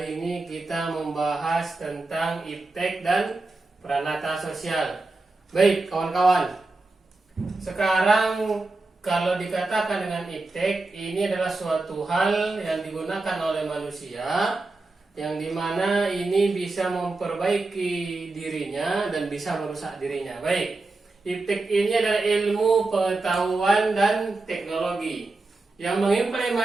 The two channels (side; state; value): left; quieter; 3.3 dB